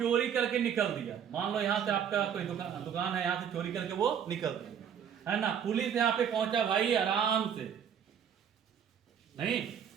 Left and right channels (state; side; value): quieter; left; 8.3 dB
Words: करके निकल दिया। मान लो यहां से आपका कोई दुकान है, यहां से चोरी करके वो निकल दिया, है ना। पुलिस यहां पे पहुंचा भाई आराम से, नहीं